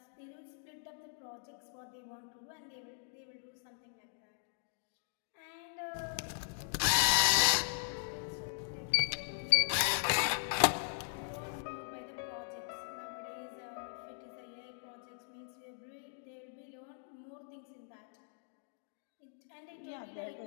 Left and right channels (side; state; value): right; silent; digital silence